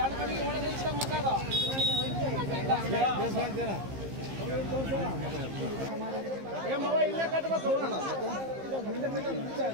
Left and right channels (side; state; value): left; late; 15 ms